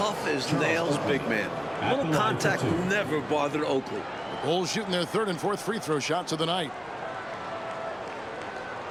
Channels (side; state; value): left; noise; rumble, 29 dB below the sound